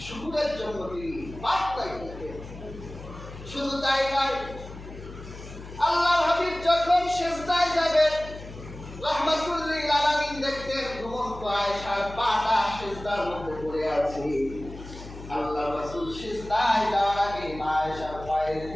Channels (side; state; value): left; noise; hum, 14 dB below the sound